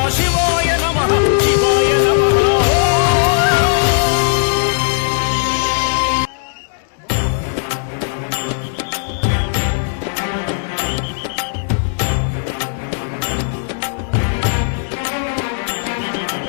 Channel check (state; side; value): silent; right; digital silence